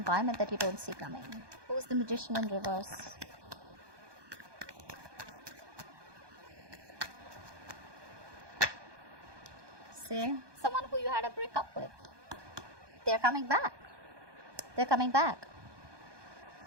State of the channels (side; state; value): left; late; 1.2 ms